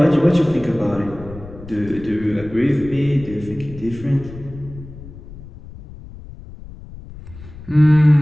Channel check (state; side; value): noise; left; rumble, 16 dB below the sound